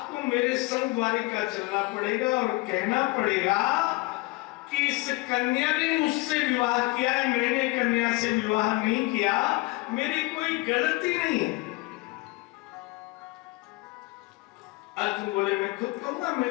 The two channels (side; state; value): right; quieter; 22.7 dB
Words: मेरे संग द्वारिका चलना पड़ेगा और कहना पड़ेगा कि इस कन्या ने मुझसे विवाह किया है, मैंने कन्या से विवाह नहीं किया, मेरी कोई गलती नहीं है। अर्जुन बोले, मैं खुद कहूंगा,